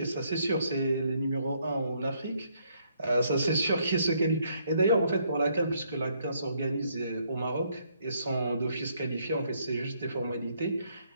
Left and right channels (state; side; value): inverted; both; correlation -0.70